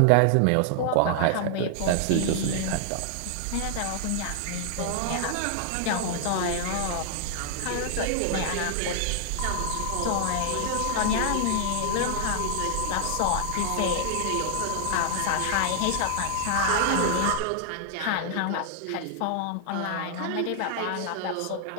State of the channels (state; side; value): different; both; correlation 0.00